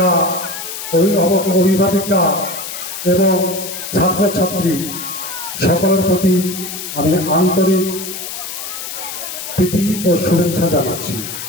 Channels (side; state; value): left; noise; hiss, 8 dB below the sound